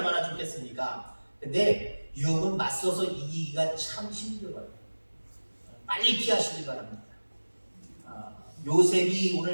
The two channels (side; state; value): both; inverted; correlation -1.00